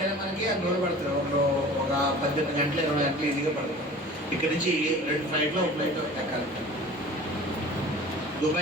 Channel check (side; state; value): both; normal; correlation 0.42